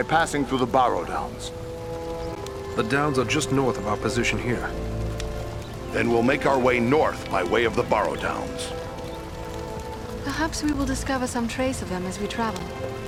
passing through the Barrow Downs. The downs are just north of our position here. Then we'll make our way north by way of the Barrow Downs. Perhaps we will discover some trace of them as we travel.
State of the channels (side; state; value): both; identical; correlation 1.00